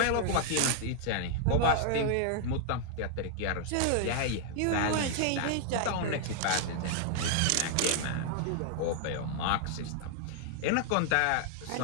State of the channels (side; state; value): both; different; correlation -0.01